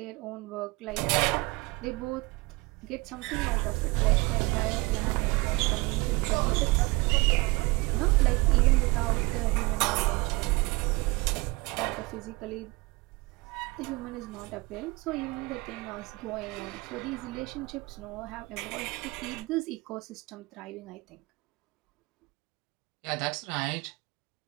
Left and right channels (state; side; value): quieter; left; 24.7 dB